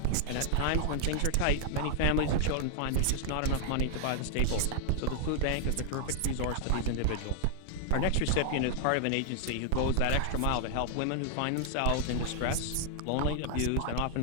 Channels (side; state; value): both; different; correlation 0.00